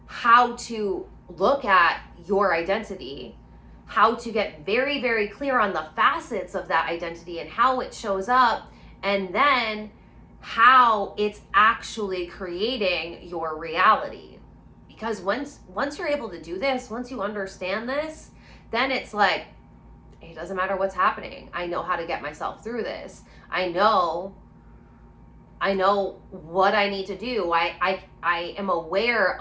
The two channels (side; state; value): both; identical; correlation 1.00